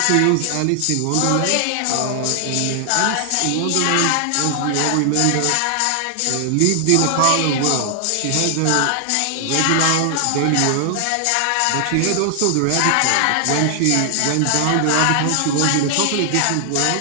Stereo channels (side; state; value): both; different; correlation 0.00